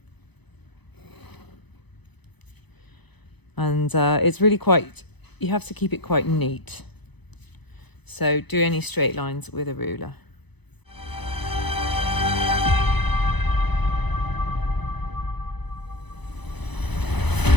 And it's really quite, you have to keep it quite neat. So do any straight lines with a ruler.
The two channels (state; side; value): late; right; 0.99 ms